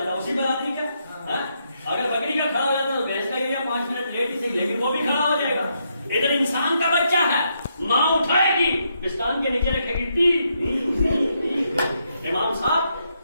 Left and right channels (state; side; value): inverted; both; correlation -0.78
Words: اسی برادری کا. اگر بکری کا کھڑا ہو جاتا تو بھینس کا ایریا 5 منٹ لیٹ ہی صحیح, لیکن وہ بھی کھڑا ہو جائے گا. ادھر انسان کا بچہ ہے, ماں اٹھائے گی, پستان کے نیچے رکھے گی. امام صاحب